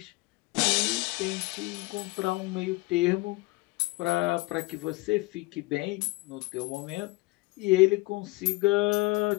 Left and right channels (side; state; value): right; quieter; 22.6 dB